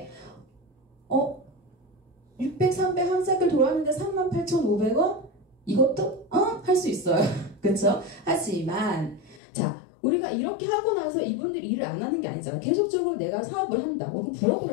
600, 300 한 사이클 돌았는데 38,500원? 이것도 할 수 있어요. 그쵸? 하지만 자, 우리가 이렇게 하고 나서 이분들이 일을 안 하는 게 아니잖아. 계속적으로 내가 사업을 한다, 혹은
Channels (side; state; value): right; drops out; at 9.4 s